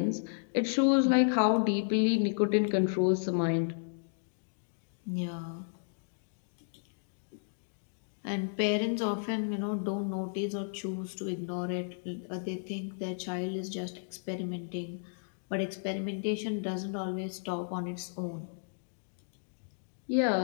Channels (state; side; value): silent; right; digital silence